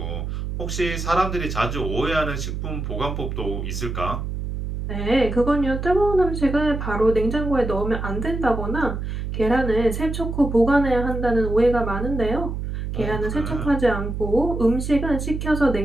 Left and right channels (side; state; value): right; noise; hum, 4 dB below the sound